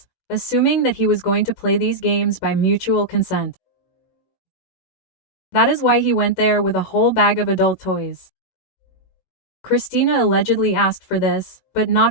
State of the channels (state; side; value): late; right; 18 ms